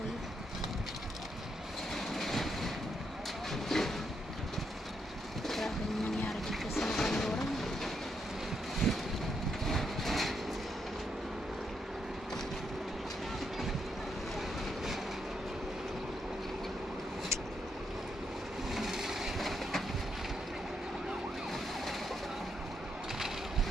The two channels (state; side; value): normal; both; correlation 0.79